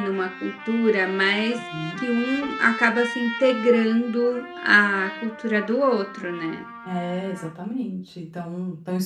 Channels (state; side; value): identical; both; correlation 1.00